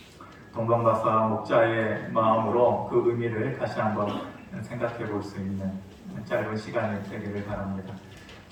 동방박사 목자의 마음으로 그 의미를 다시 한번 생각해 볼 수 있는 짧은 시간이 되기를 바랍니다.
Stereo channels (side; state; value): both; identical; correlation 1.00